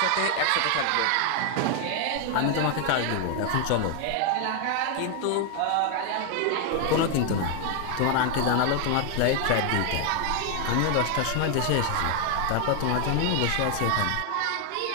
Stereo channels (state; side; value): different; both; correlation 0.01